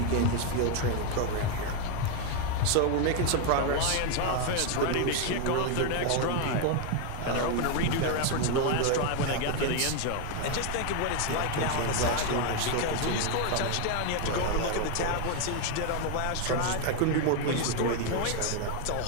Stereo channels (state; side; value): different; both; correlation 0.01